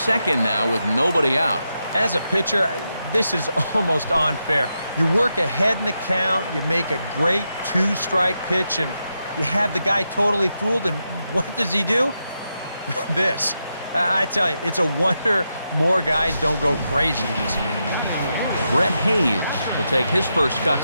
now with nobody out. As a pitcher, this is almost unfair. You work ahead in the count, you make a great 2-strike pitch, and you have the guy totally fooled, and what does he do? This. I tell you, it's a wonder more guys don't go crazy in this game. Brett Hayes will take his first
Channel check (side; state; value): both; inverted; correlation -0.86